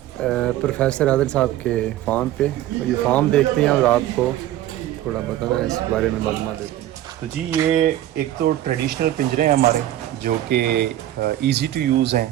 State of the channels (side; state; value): left; quieter; 13.5 dB